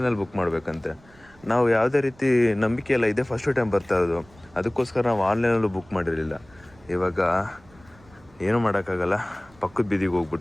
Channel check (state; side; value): noise; right; rumble, 27 dB below the sound